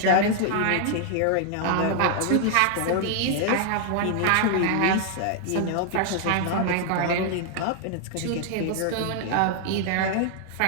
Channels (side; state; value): both; different; correlation 0.00